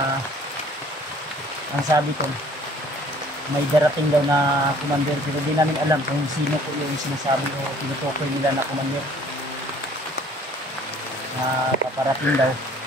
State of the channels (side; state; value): both; normal; correlation 0.55